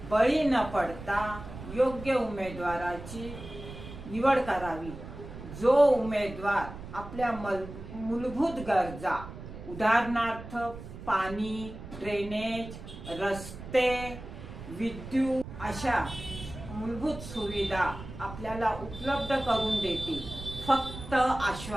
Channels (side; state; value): right; noise; rumble, 12 dB below the sound